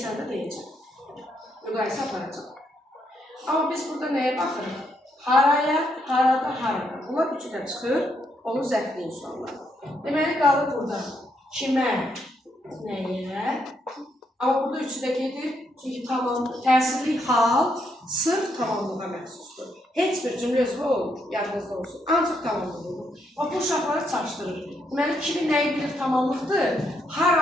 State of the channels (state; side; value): normal; both; correlation 0.76